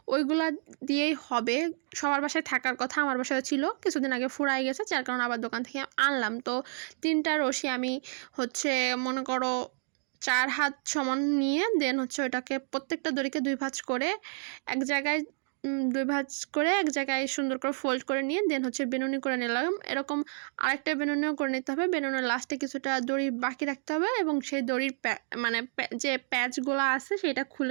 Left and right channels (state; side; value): silent; left; 58 dB below the other